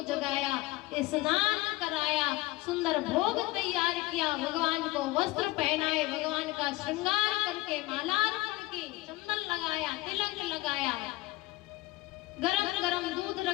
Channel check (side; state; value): right; quieter; 20.2 dB